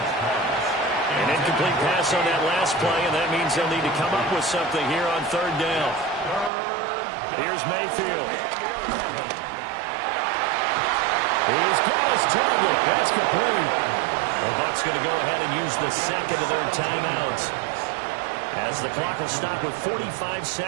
An incomplete pass on that last play, and that means they'll need to come up with something here on 3rd down. Here's Mayfield. He's got his target. That's complete. The Bucs going to go ahead and use the 2nd of their timeouts as the clock will stop with 45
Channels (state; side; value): drops out; left; at 6.5 s